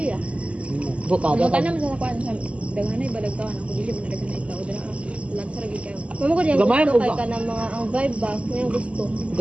ah. Buka Ano ba? ka naman sa kuan sa daghanay balagtawan ako dili ba na daghanay tao dira. Lansa lagi kayo. Mamo ko diyan Gamay gusto mo kay ba? ka ng mga ang vibe ba, may gusto.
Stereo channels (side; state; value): left; late; 0.060 ms